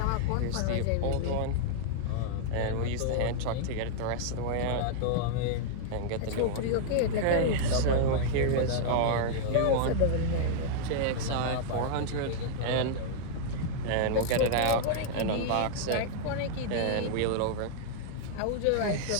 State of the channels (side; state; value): both; different; correlation -0.01